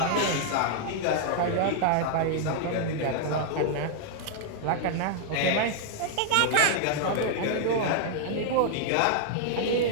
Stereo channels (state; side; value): different; both; correlation -0.01